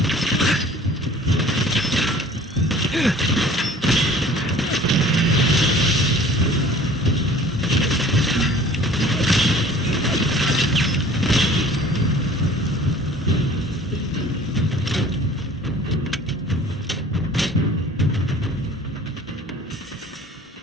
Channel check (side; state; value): both; normal; correlation 0.48